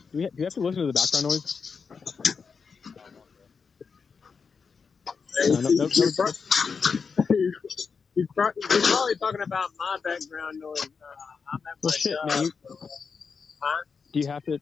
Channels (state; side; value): quieter; right; 5.5 dB